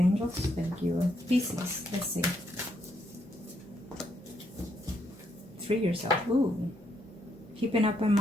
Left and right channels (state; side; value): normal; both; correlation 0.75